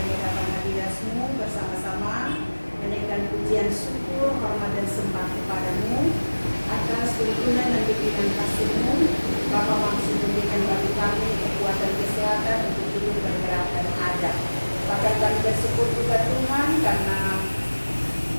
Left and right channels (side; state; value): both; inverted; correlation -1.00